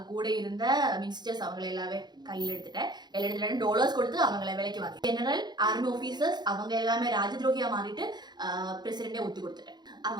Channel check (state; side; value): late; left; 0.21 ms